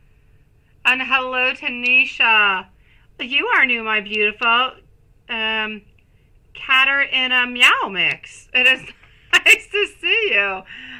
And hello, Tanisha. You are new, my beautiful. Catter in a meow mix. It is nice to see you.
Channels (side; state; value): both; identical; correlation 1.00